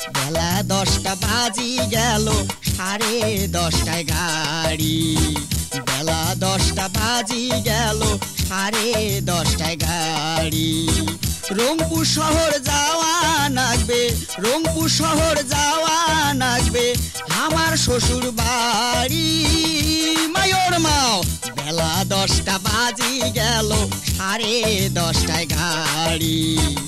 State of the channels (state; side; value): identical; both; correlation 1.00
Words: বেলা 10টা বাজি গেল, 10:30টায় গাড়ি। বেলা 10টা বাজি গেল, 10:30টায় গাড়ি। রংপুর শহর যাওয়া লাগবে, রংপুর শহর যাওয়া লাগবে আমার শ্বশুর বাড়ি। মায়োর মাও বেলা 10টা বাজি গেল, 10:30টায় গাড়ি।